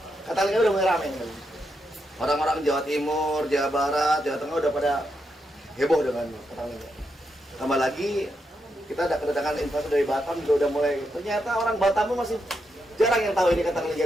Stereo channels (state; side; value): normal; both; correlation 0.83